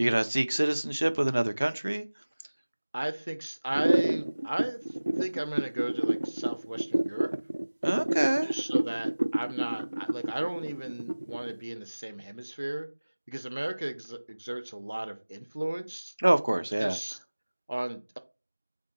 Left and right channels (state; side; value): inverted; both; correlation -1.00